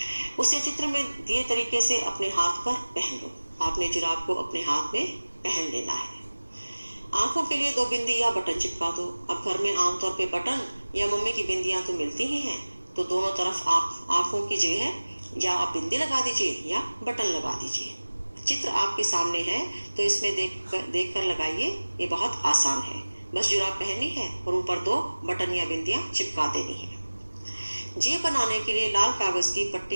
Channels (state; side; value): inverted; both; correlation -1.00